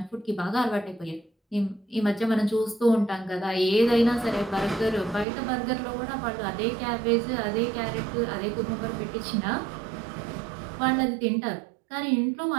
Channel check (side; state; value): left; drops out; at 5.2 s